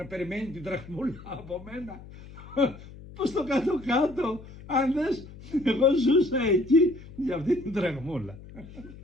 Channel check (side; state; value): left; noise; hum, 17 dB below the sound